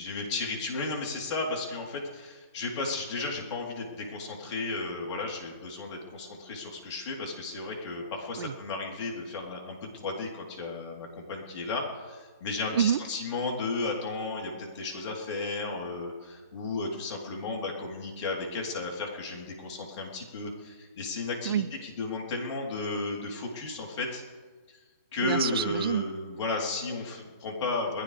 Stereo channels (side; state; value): both; inverted; correlation -0.37